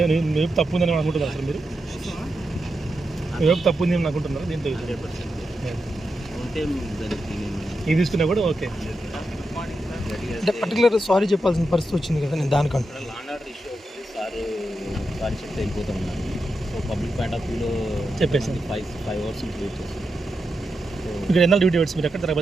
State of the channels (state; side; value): normal; both; correlation 0.87